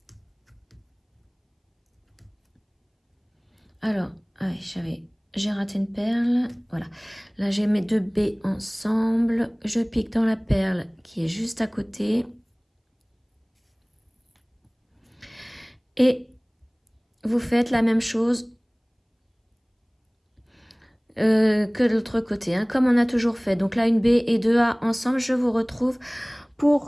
Alors, j'ai raté une perle. Voilà. Là, j'ai mes 2 B ensemble. Je pique dans la perle qui est juste à côté. Et vous faites la même chose que de l'autre côté, hein, comme on a toujours fait. Donc là, une B et 2 A ensemble. Je vous retrouve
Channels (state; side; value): identical; both; correlation 1.00